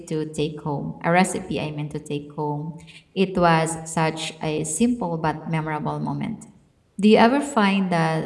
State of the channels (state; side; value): identical; both; correlation 1.00